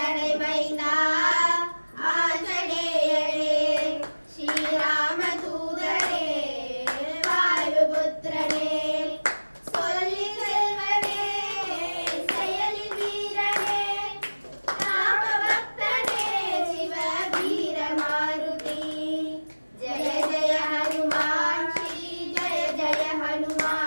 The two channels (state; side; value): inverted; both; correlation -1.00